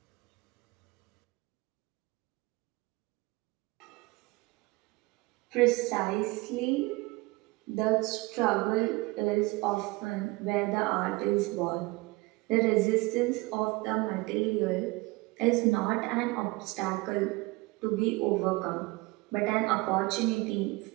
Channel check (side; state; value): left; quieter; 23.2 dB